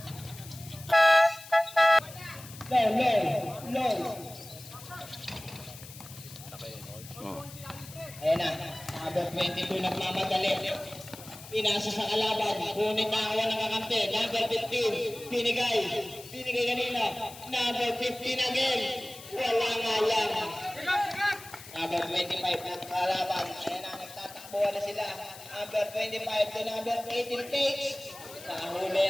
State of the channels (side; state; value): left; noise; hiss, 16 dB below the sound